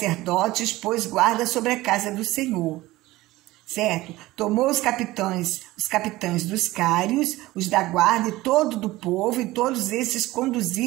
pôs guarda sobre a casa do Senhor. Certo? Tomou os capitães dos cários, os da guarda e todo do povo, e todos esses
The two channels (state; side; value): quieter; left; 18.2 dB